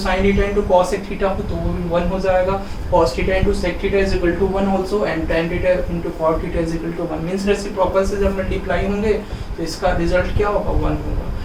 theta into cosec theta हो तो वो भी 1 हो जाएगा, cos theta into sec theta is equal to 1 also and tan theta into cot theta is equal to 1 means reciprocal से जब मल्टीप्लाई होंगे तो इसका रिजल्ट क्या होगा 1 होगा,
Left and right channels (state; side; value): identical; both; correlation 1.00